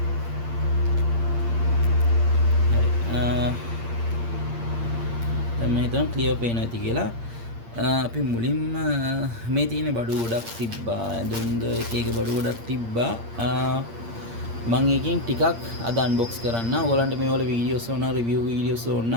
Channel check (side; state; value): left; late; 8.7 ms